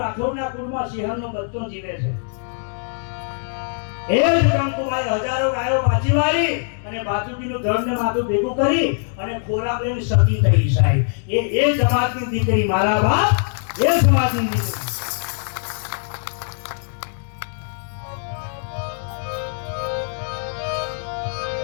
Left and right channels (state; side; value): silent; right; digital silence